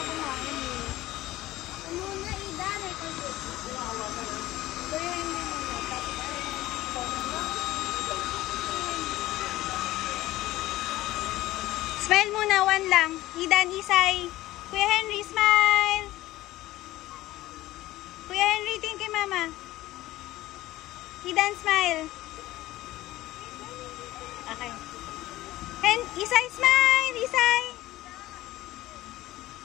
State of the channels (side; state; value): right; quieter; 16.5 dB